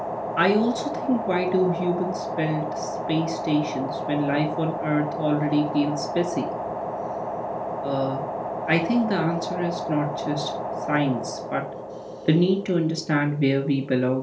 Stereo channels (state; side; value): identical; both; correlation 1.00